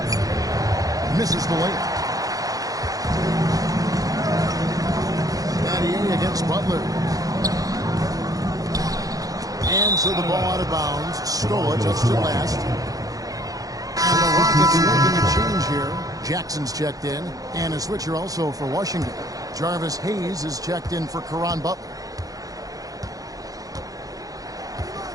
Misses the layup. Battier against Butler. And so the ball out of bounds. Scola touched it last. And the Rockets making a change here. Jackson's checked in. And a switcher also for Washington. Jarvis Hayes is checked in for Caron Butler.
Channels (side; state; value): left; late; 0.17 ms